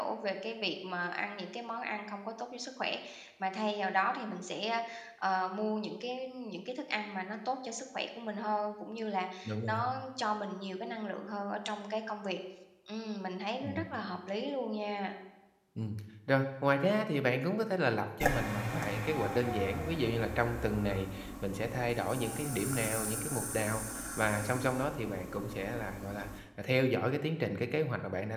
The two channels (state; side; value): identical; both; correlation 1.00